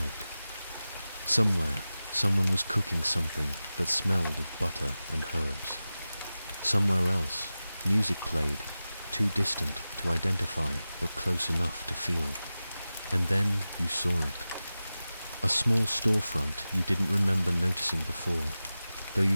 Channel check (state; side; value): inverted; both; correlation -0.95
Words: Somewhere, someone was cooking something that smelled of butter and herbs. Somewhere else, music played, too distant to identify but close enough to feel. And then you saw it. A small storefront you didn't remember noticing before, though you